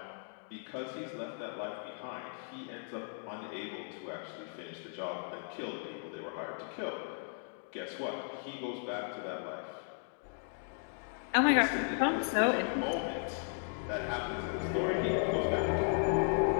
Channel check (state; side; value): silent; right; 54 dB below the other